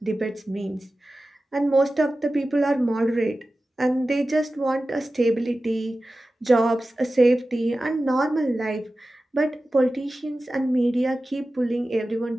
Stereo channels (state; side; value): normal; both; correlation 0.95